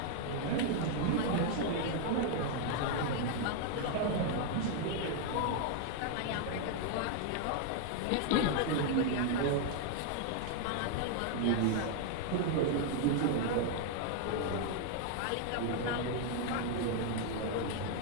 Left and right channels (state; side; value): different; both; correlation 0.00